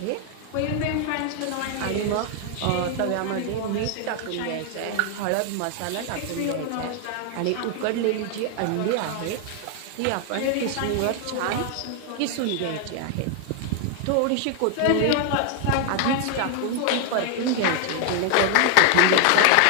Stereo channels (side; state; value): both; different; correlation 0.00